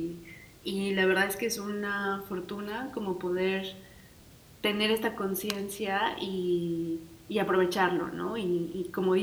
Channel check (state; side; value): identical; both; correlation 1.00